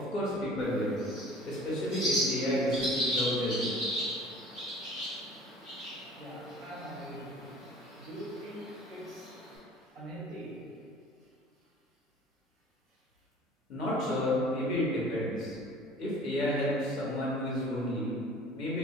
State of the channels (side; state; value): both; normal; correlation 0.47